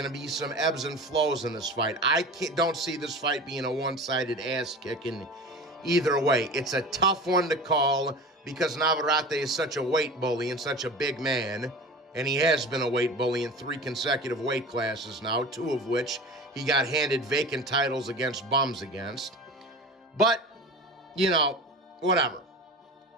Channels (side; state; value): both; normal; correlation 0.34